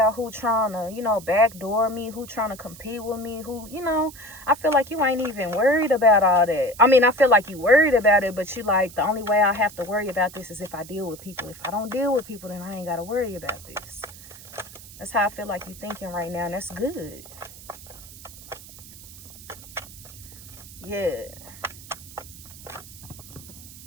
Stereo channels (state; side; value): noise; right; hiss, 17 dB below the sound